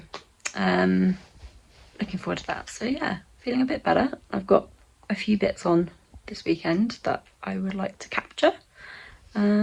looking forward to that. So yeah, feeling a bit better. I've got a few bits on this weekend that I would like to capture,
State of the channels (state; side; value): identical; both; correlation 1.00